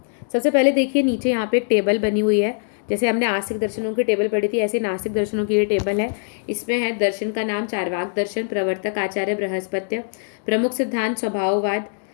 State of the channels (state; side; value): silent; right; 64 dB below the other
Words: सबसे पहले देखिए, नीचे यहाँ पे एक टेबल बनी हुई है। जैसे हमने आस्तिक दर्शनों की टेबल पढ़ी थी, ऐसे नास्तिक दर्शनों की ये टेबल है। इसमें है दर्शन का नाम चार्वाक दर्शन, प्रवर्तक आचार्य बृहस्पत्य, प्रमुख सिद्धांत स्वभाववाद,